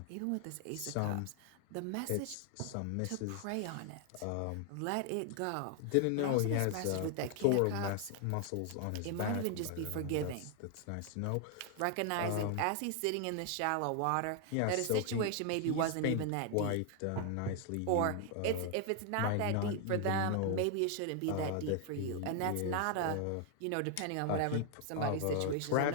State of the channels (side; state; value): both; different; correlation 0.00